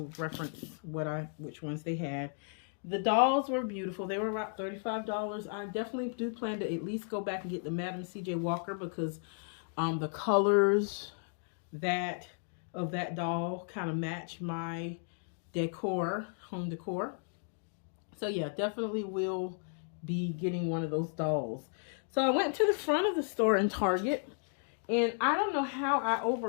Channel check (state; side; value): silent; right; 55 dB below the other